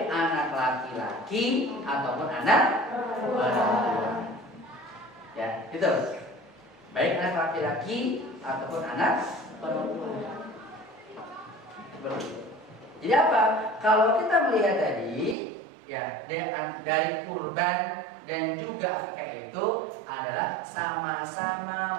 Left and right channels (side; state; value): left; drops out; at 15.4 s